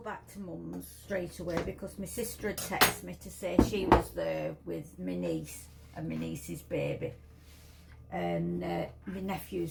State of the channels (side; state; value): both; identical; correlation 1.00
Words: back to mum's straight away because my sister had texted me to say she was there with my niece and my niece's baby. And my